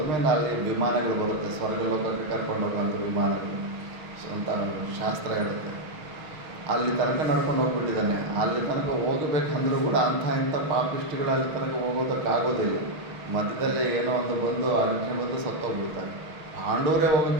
ಅಲ್ಲಿ ವಿಮಾನಗಳು ಬರುತ್ತೆ, ಸ್ವರ್ಗ ಲೋಕಕ್ಕೆ ಕರ್ಕೊಂಡು ಹೋಗೋಂಥ ವಿಮಾನಗಳು ಅಂತ ಶಾಸ್ತ್ರ ಹೇಳುತ್ತೆ. ಅಲ್ಲಿ ತನಕ ನಡ್ಕೊಂಡು ಹೋಗ್ಬಿಟ್ಟಿದ್ದಾನೆ. ಅಲ್ಲಿ ತನಕ ಹೋಗಬೇಕಂದ್ರೂ ಕೂಡ ಇಂಥ ಪಾಪಿಷ್ಟಿಗಳು ಅಲ್ಲಿ ತನಕ ಹೋಗೋದಕ್ಕಾಗೋದಿಲ್ಲ. ಮಧ್ಯದಲ್ಲೇ ಏನೋ ಒಂದು ಬಂದು ಅರ್ಜುನ ಬಂದು ಸತ್ತೋಗ್ಬಿಡ್ತಾರೆ. ಪಾಂಡವರೇ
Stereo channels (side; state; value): left; late; 6.3 ms